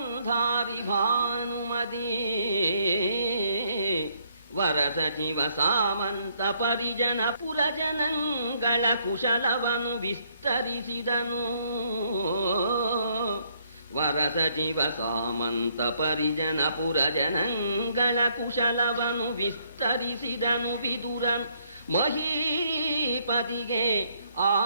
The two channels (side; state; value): both; inverted; correlation -0.69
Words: ಭಾನುಮತಿ ವರ ಸಚಿವ ಸಾಮಂತ ಪರಿಜನ ಪುರಜನಗಳ ಕುಶಲವನು ವಿಸ್ತರಿಸಿದನು. ವರ ಸಚಿವ ಸಾಮಂತ ಪರಿಜನ ಪುರಜನಗಳ ಕುಶಲವನು ವಿಸ್ತರಿಸಿದನು. ವಿದುರನು ಮಹೀಪತಿಗೆ